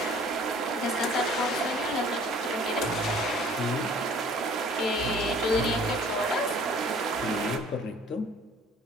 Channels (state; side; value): normal; both; correlation 0.52